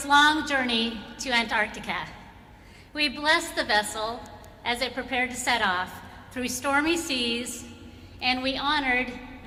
long journey to Antarctica. We blessed the vessel as it prepared to set off through stormy seas, and we honored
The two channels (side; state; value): both; identical; correlation 1.00